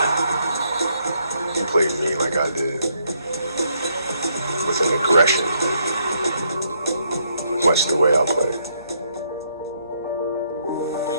He plays mean like I did. with an aggression, much the way I play.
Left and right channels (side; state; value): both; inverted; correlation -0.72